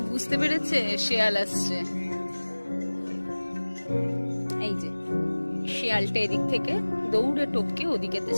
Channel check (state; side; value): inverted; both; correlation -1.00